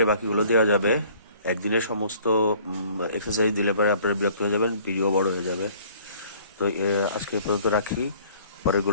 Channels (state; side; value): inverted; both; correlation -0.55